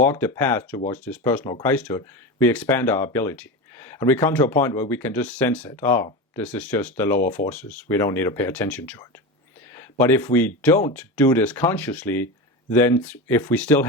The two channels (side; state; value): both; normal; correlation 0.22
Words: the path towards this personal Christhood, we expand our ability. And we come to a point where we can just sense it. Oh, this is just the lower forces. We don't need to pay attention to it. But if we don't do this consciously, then if we still